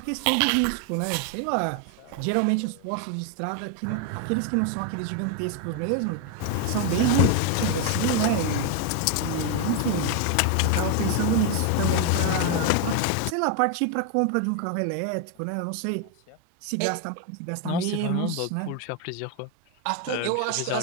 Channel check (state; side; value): different; both; correlation 0.01